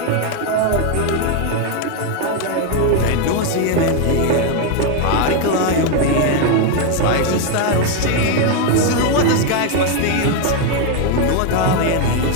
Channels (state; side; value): different; both; correlation 0.01